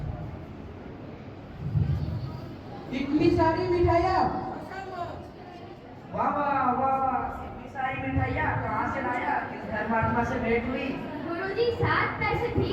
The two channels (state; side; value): identical; both; correlation 1.00